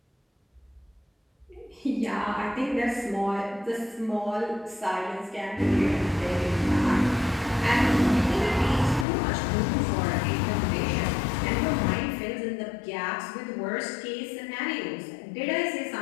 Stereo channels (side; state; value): right; drops out; at 9.1 s